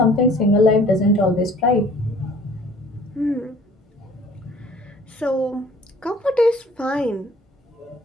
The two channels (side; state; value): both; normal; correlation 0.52